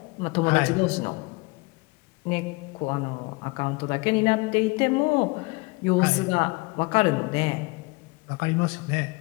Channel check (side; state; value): right; quieter; 26.0 dB